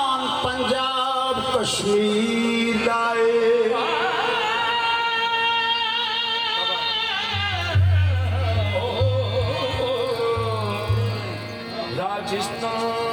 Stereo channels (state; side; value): identical; both; correlation 1.00